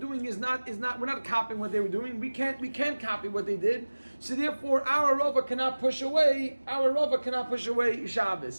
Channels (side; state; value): both; inverted; correlation -1.00